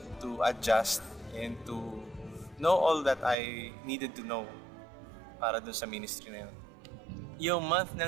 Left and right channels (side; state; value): left; drops out; at 3.4 s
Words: to adjust and to know all that I needed to know para dun sa ministry na yun. Yung month